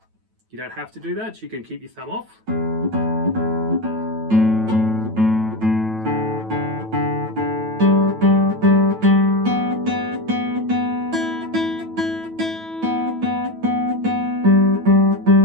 You don't have to do that. You can keep your thumb off.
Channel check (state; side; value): late; left; 9.1 ms